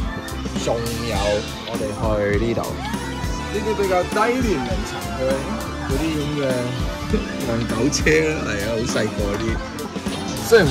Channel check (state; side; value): identical; both; correlation 1.00